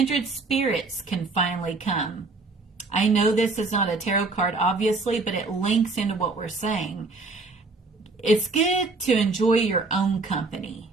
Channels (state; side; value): quieter; left; 3.6 dB